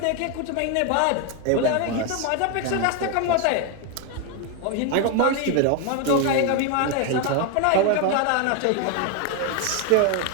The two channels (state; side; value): different; both; correlation 0.01